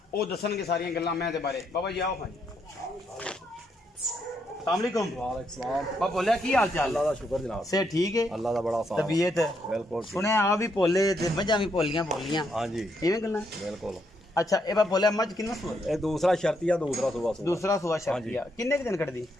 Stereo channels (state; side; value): normal; both; correlation 0.77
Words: वो दसणगे सारियां गल्लां मैं दे बारे। बाबा जी आओ भाई अस्सलामुअलैकुम। बाबा बोलिया की हाल चाल? अल्लाह दा शुक्र जनाब से ठीक है, अल्लाह दा बड़ा साथ तबीयत बिल्कुल सुने आ भी भोले ते मझां भी भोलियां हां जी इवें गल्लां बिल्कुल। अच्छा ए बाबा बोलिया मझ किन्ना सुआ? ए दूसरा शर्तिया दूसरा सुबह शर्तिया किन्ने के दिन कटदी?